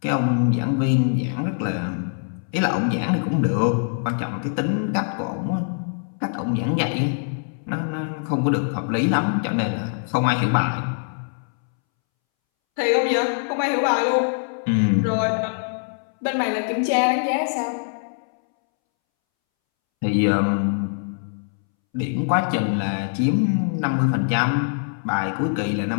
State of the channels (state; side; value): silent; right; 63 dB below the other